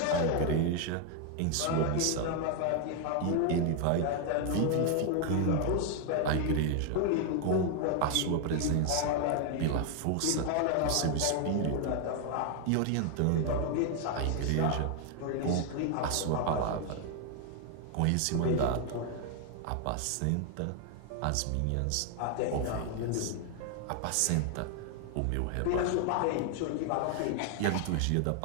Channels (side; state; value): both; different; correlation 0.00